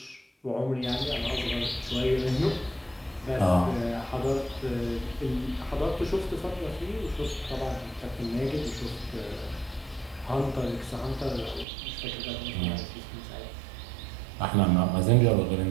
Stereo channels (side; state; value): left; drops out; at 11.7 s